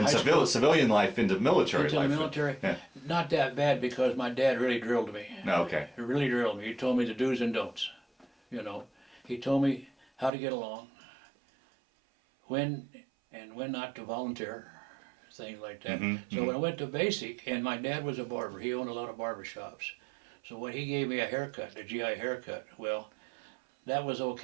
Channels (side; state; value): left; drops out; at 10.3 s